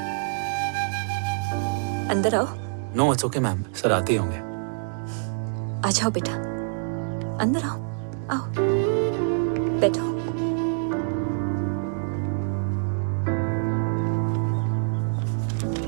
अंदर आओ। No it's okay ma'am, sir आते ही होंगे। आ जाओ बेटा, अंदर आओ। आओ, बैठो।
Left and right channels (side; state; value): left; silent; digital silence